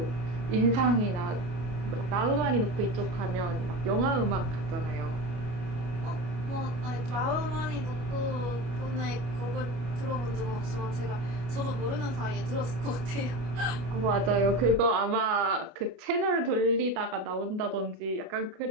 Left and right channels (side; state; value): left; late; 25 ms